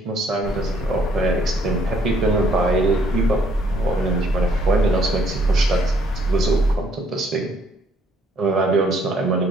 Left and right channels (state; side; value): normal; both; correlation 0.66